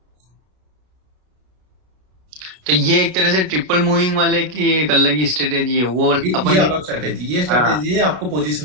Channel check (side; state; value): left; late; 32 ms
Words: तो ये एक तरह से ट्रिपल मूविंग वाले की एक अलग ही स्ट्रेटेजी है। वो ये अलग स्ट्रेटेजी, ये स्ट्रेटेजी है आपको